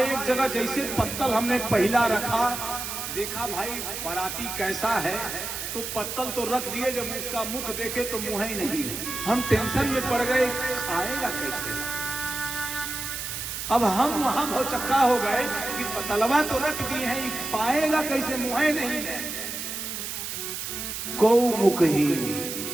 जगह जैसे पत्तल हमने पहला रखा, देखा भाई बाराती कैसा है, तो पत्तल तो रख दिए, जब उसका मुख देखे तो मुंह ही नहीं। हम टेंशन में पड़ गए, खाएगा कैसे? अब हम वहां भौचक्का हो गए कि पतलवा तो रख दिए हैं, पाएगा कैसे, मुंह ही नहीं है। को मुखहीन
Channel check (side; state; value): right; noise; hiss, 5 dB below the sound